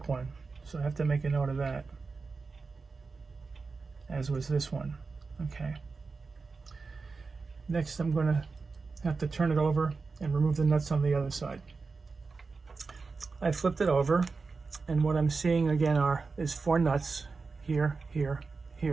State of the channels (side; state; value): left; quieter; 4.4 dB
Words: one, so I have to make a note of that, as was this one. Okay. Next, I'm going to have to turn it over and remove the nuts on the other side. I flipped it over, and what I'm seeing again is 4 nuts here, here,